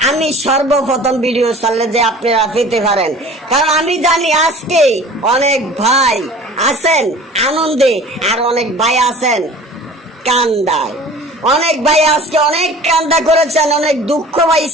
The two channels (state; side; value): normal; both; correlation 0.44